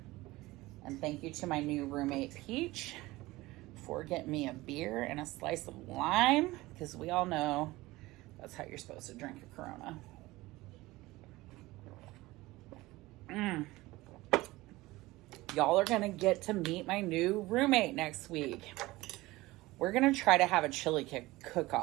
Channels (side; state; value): left; quieter; 19.5 dB